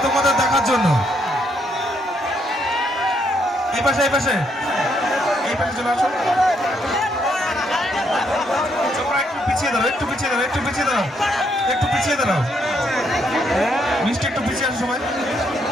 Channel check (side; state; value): both; normal; correlation 0.74